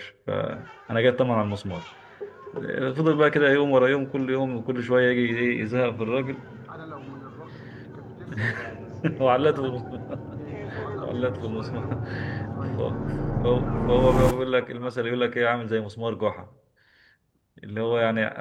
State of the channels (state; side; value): identical; both; correlation 1.00